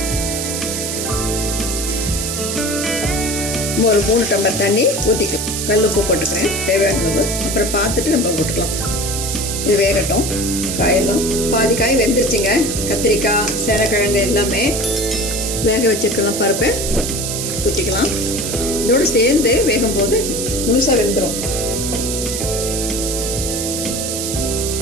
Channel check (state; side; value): noise; right; hiss, 3 dB below the sound